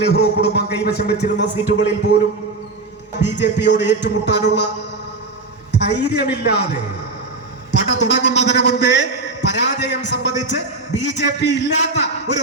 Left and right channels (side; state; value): left; quieter; 3.5 dB